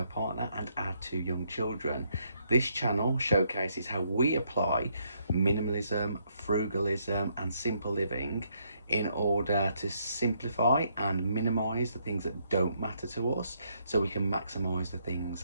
partner and our two young children. This channel showcases how we apply minimalism, frugalism and simple living in order to simplify and minimise the things that don't matter to us so we can maximise the things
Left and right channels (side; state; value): both; inverted; correlation -0.74